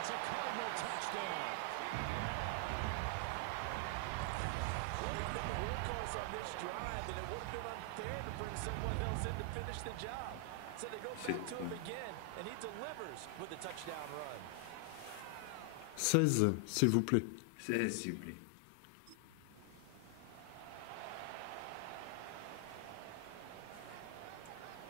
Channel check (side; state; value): both; different; correlation 0.00